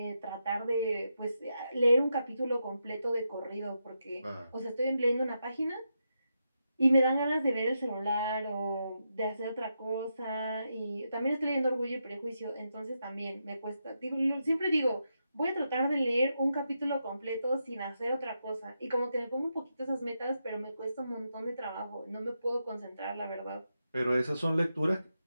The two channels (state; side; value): inverted; both; correlation -0.85